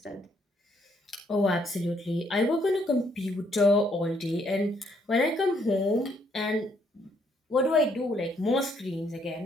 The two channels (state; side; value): normal; both; correlation 0.70